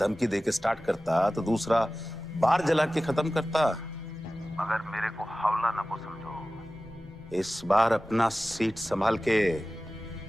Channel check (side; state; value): both; normal; correlation 0.96